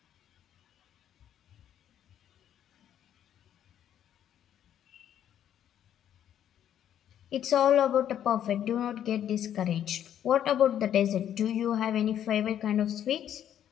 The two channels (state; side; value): quieter; right; 10.3 dB